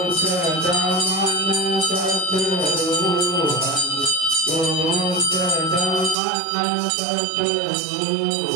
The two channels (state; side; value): drops out; left; at 6.2 s